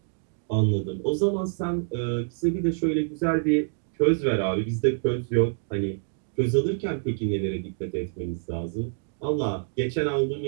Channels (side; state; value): left; silent; 60 dB below the other